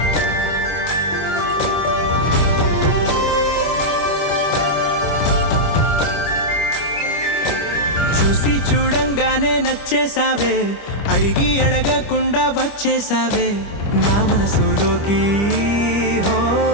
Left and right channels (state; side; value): late; right; 25 ms